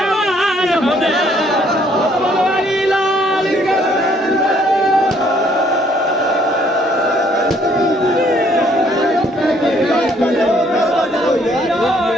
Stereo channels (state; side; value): normal; both; correlation 0.64